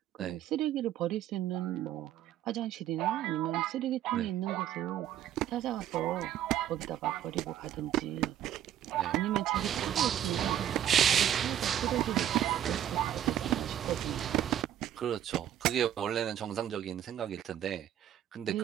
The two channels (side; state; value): left; quieter; 11.0 dB